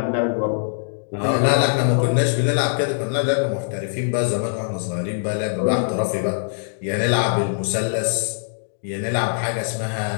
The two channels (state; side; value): silent; right; digital silence